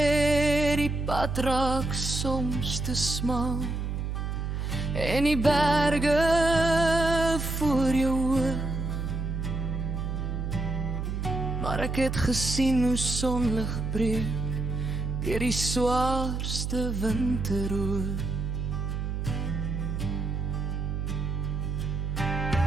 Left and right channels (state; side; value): noise; right; hum, 2 dB below the sound